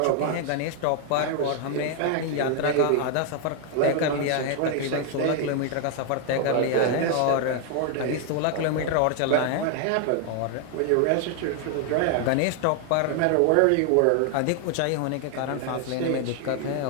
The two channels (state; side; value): different; both; correlation 0.00